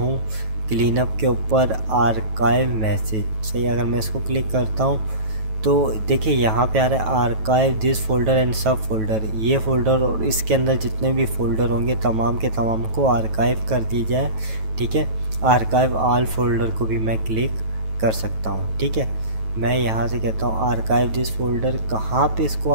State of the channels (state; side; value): late; left; 9.2 ms